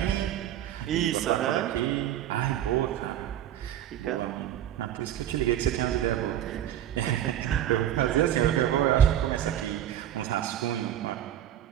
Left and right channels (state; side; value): quieter; left; 11.2 dB